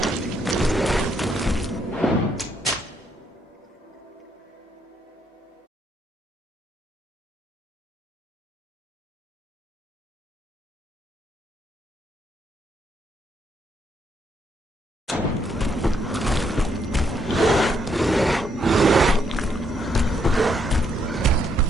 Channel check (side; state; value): both; normal; correlation 0.74